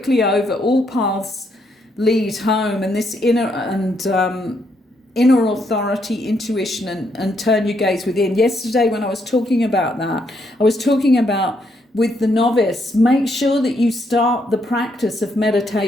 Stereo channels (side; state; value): both; normal; correlation 0.75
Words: over all paths lead home, and this inner authority, intuition, and turn your gaze within. Yesterday when I was talking about that, I was talking about with the novice, make sure that you start the practice of